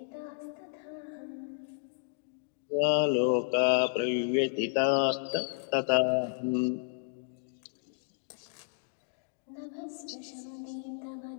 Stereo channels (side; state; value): right; silent; digital silence